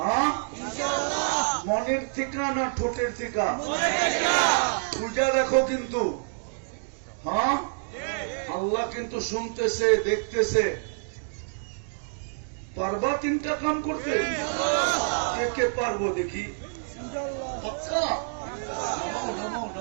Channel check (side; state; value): left; silent; digital silence